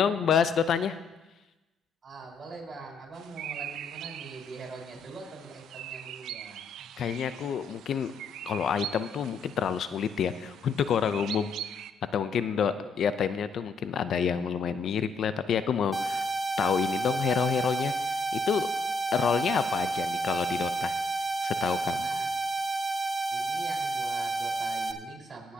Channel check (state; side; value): quieter; right; 3.5 dB